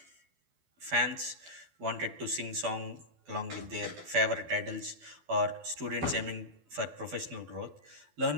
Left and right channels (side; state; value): left; late; 12 ms